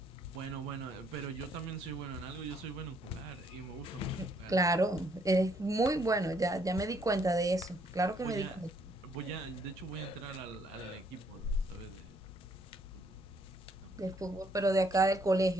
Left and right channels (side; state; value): both; normal; correlation 0.68